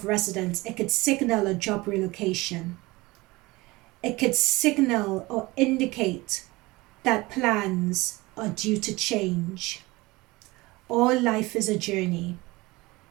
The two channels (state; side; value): quieter; left; 21.7 dB